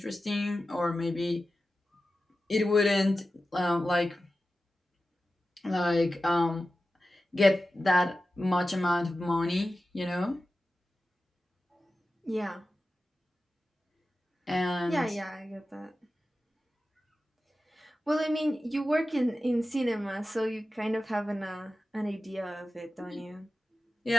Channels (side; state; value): both; normal; correlation 0.93